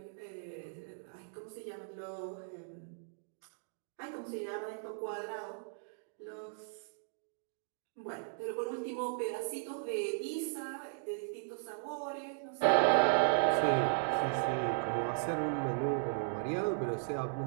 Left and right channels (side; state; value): left; silent; digital silence